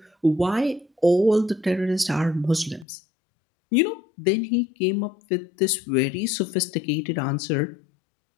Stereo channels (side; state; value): right; drops out; at 2.9 s